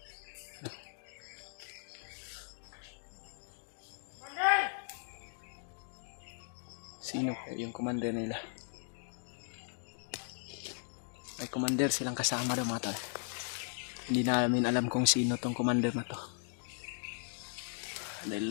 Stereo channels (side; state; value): right; silent; digital silence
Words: Sino yung commander nila? May commander silang kasama daw, mga tol. Hindi namin alam kung sino tong commander na to.